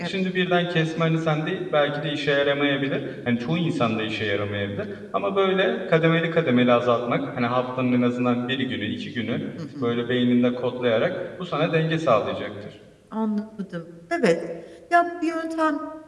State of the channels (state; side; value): identical; both; correlation 1.00